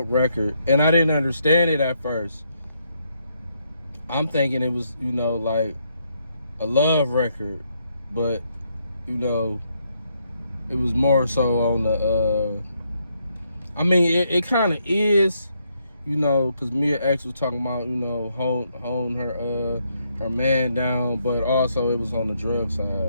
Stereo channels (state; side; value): inverted; both; correlation -0.76